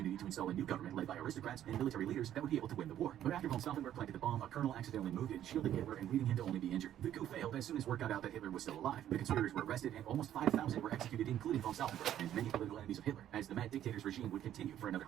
to install a new government led by aristocrats and military leaders that would be able to win the war. But after von Stauffenberg planted the bomb, a colonel accidentally moved it, shielding Hitler and leaving him to only be injured. The coup failed as soon as word got out that Hitler was still alive. The conspirators were arrested and almost 5,000 were executed, including von Stauffenberg and many political enemies of Hitler, as the mad dictator's regime would continue for another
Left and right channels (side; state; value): left; quieter; 11.4 dB